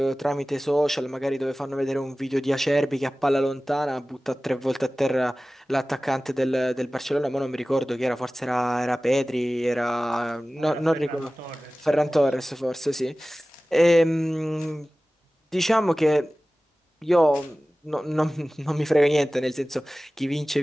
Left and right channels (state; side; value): normal; both; correlation 0.97